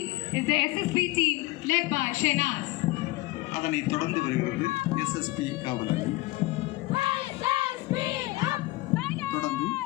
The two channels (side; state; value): right; quieter; 20.0 dB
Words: is the SSB team led by Shehnaz. அதனை தொடர்ந்து வருகிறது எஸ்எஸ்பி காவல் அணி. தொடர்ந்து